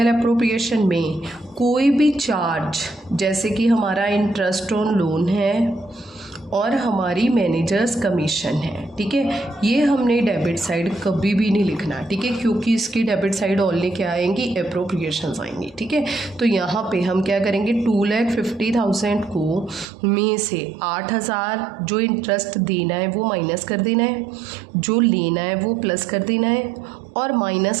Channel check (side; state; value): left; drops out; at 19.9 s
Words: अप्रोप्रिएशन में कोई भी चार्ज, जैसे कि हमारा इंटरेस्ट ऑन लोन है और हमारी मैनेजर्स कमीशन है, ठीक है, ये हमने डेबिट साइड कभी भी नहीं लिखना, ठीक है, क्योंकि इसकी डेबिट साइड ओनली क्या आएंगी, एप्रोप्रिएशंस आएंगी, ठीक है। तो यहाँ पे हम क्या करेंगे, 2,50,000 को में से 8,000 जो इंटरेस्ट देना है वो माइनस कर देना है, जो लेना है वो प्लस कर देना है, और माइनस